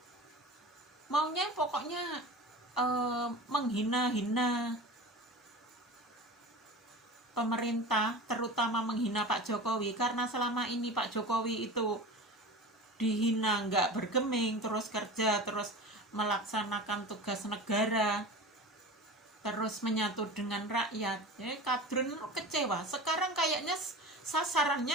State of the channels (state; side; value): normal; both; correlation 0.33